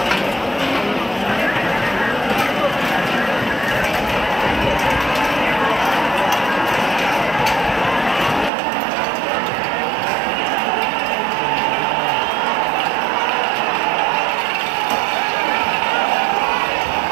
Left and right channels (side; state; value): left; drops out; at 8.5 s